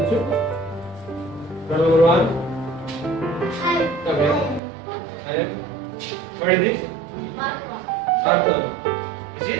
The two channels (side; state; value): left; drops out; at 4.6 s